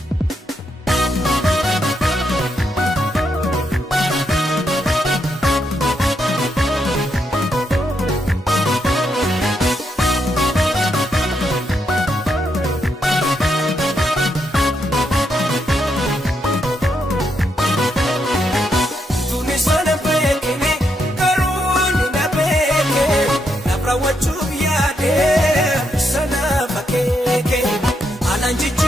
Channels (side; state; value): both; normal; correlation 0.79